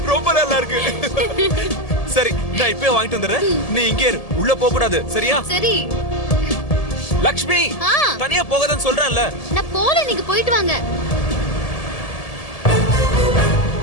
ரொம்ப நல்லா இருக்கு. சரி, நான் இப்பவே வாங்கிட்டு வந்துடுறேன். நீ இங்கே இரு, உள்ள போக கூடாது. சரியா? சரி. லக்ஷ்மி, தனியா போகாதன்னு சொல்றேன்ல. நான் போல, நீங்க போயிட்டு வாங்க.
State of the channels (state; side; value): late; right; 1.7 ms